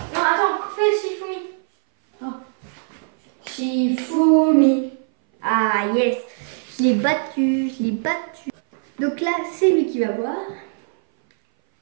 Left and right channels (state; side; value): silent; left; 60 dB below the other